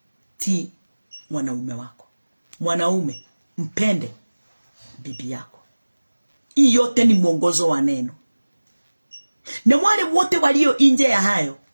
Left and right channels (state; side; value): inverted; both; correlation -1.00